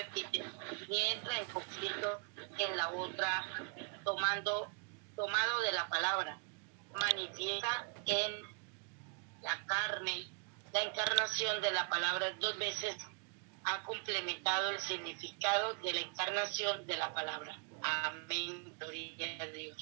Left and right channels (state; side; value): quieter; left; 39.2 dB